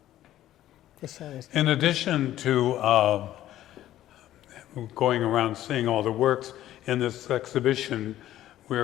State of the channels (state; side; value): quieter; right; 13.3 dB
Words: Just show us. In addition to going around seeing all the works in this exhibition,